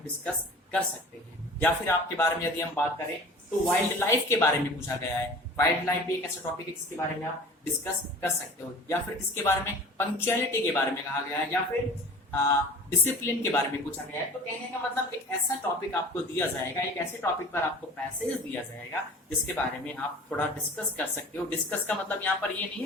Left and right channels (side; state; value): both; normal; correlation 0.42